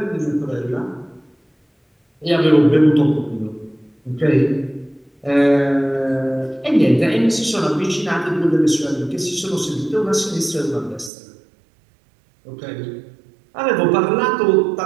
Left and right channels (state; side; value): drops out; left; at 11.1 s